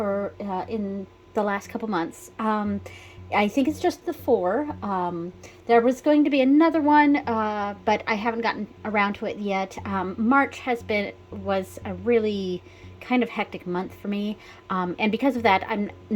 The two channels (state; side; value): identical; both; correlation 1.00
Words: in the last couple months. I think it's just the four. There was going to be another one, but I haven't gotten around to it yet. March was a really kind of hectic month for me. And because of that, I'm